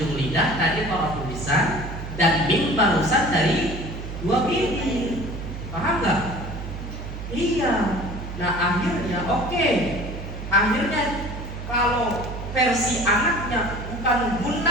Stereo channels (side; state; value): right; noise; hum, 8 dB below the sound